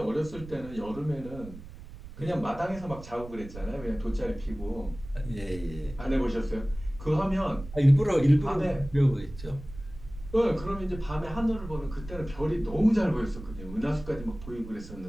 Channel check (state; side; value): noise; right; rumble, 14 dB below the sound